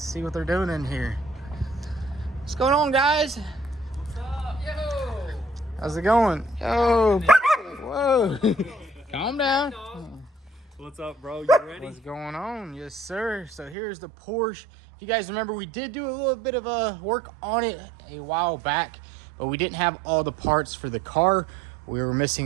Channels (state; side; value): drops out; left; at 13.8 s